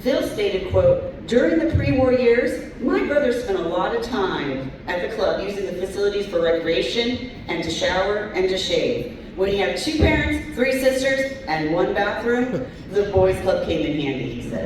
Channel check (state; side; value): identical; both; correlation 1.00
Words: stated, quote, during the pre-war years, my brothers spent a lot of time at the club using the facilities for recreation and to shower and to shave. When you have 2 parents, 3 sisters, and 1 bathroom, the Boys Club came in handy, he